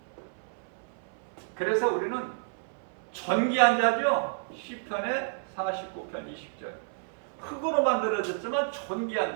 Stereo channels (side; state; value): left; silent; 58 dB below the other